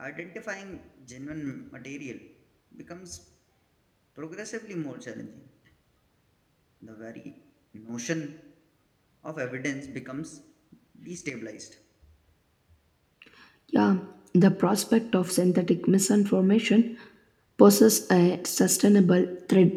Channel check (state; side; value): identical; both; correlation 1.00